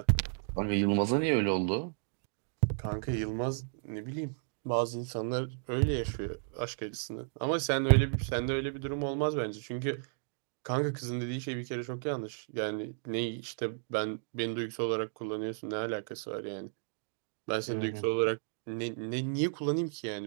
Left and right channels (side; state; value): left; silent; digital silence